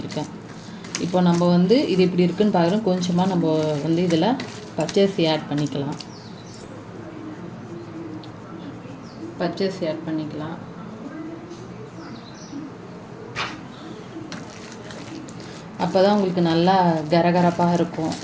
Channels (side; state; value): both; identical; correlation 1.00